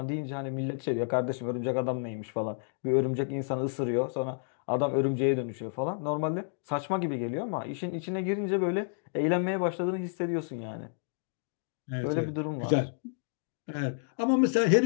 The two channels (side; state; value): right; silent; digital silence